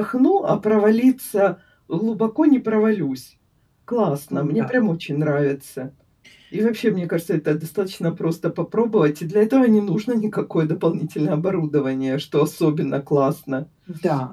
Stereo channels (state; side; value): identical; both; correlation 1.00